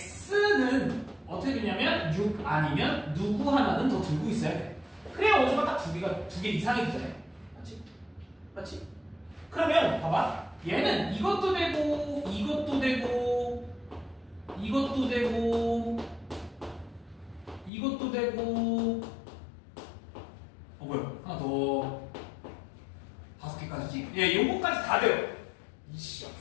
어떻게 되냐면 6 아니면 누구 하나는 더 들고 있어야 돼. 그래야 원소가 딱 2개 이상이 되잖아요. 맞지? 맞지? 그러면 봐봐. 얘는 이것도 되고 이것도 되고 이것도 되고 이것도 되고 뭐야? 하나 더 5개까지지? 예, 요거까지 다 돼요. 이씨,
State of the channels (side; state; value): right; drops out; at 17.7 s